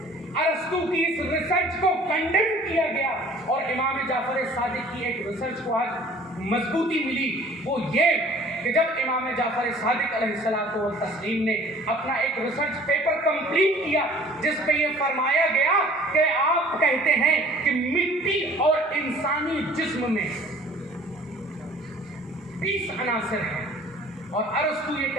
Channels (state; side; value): normal; both; correlation 0.51